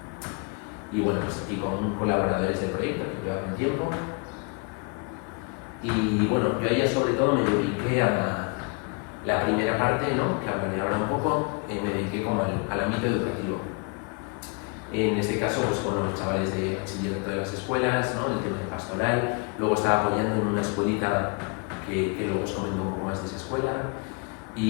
Y bueno, pues aquí con colaboradores del proyecto que llevaban tiempo. Y bueno, yo ya sobre todo me dediqué a la primera parte, ¿no? Que hablaré ahora un poco, me dediqué como al ámbito educativo. En este caso, pues con los chavales de bachillerato de las escuelas, ¿no? El tema de pastoral. Luego estaba apoyando en una escuelita que luego os comento un poco más de esa escuela.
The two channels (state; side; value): quieter; right; 32.8 dB